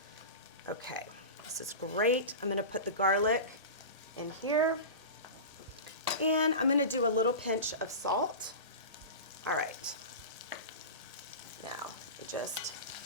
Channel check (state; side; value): late; left; 1.8 ms